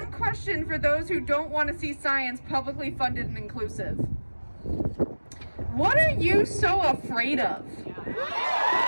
question for those who don't want to see science publicly funded and inclusive. What are you so afraid of?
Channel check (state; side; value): inverted; both; correlation -1.00